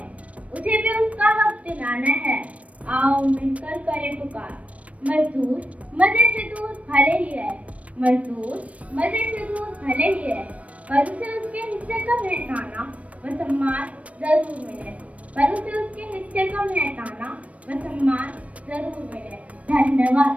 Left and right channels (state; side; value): late; left; 0.066 ms